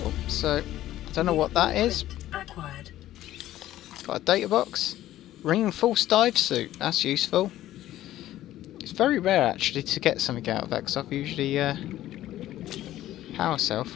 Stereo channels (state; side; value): quieter; right; 13.9 dB